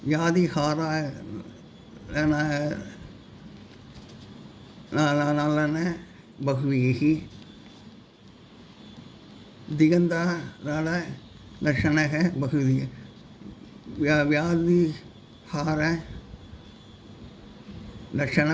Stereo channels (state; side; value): identical; both; correlation 1.00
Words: யாதிஹாரான பகுவிரீகி, திகந்தாரால லட்சணக பகுவிரீகி, வியாதிஹார லட்சண